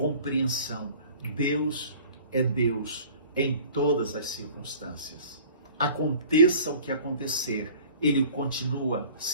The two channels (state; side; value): inverted; both; correlation -0.47